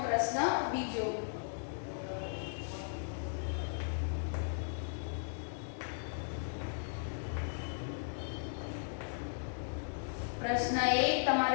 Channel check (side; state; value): right; silent; digital silence